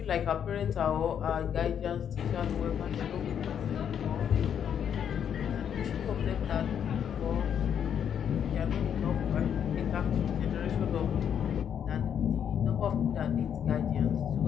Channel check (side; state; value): right; quieter; 8.6 dB